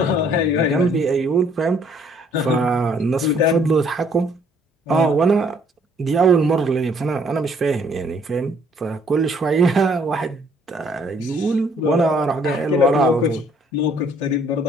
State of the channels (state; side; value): normal; both; correlation 0.63